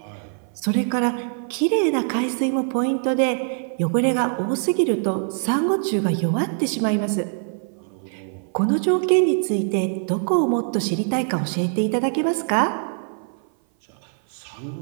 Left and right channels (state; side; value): silent; left; 57 dB below the other